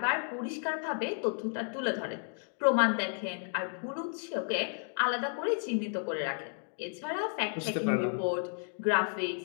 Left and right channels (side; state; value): right; silent; 56 dB below the other